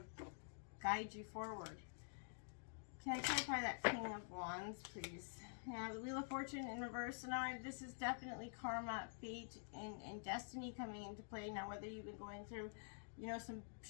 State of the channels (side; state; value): right; silent; digital silence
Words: guide you forward. Can I clarify that King of Wands, please? Yeah, the Wheel of Fortune in reverse. So now this is definitely karma, fate, and destiny coming into play. Now, whether you've been going through, you know, some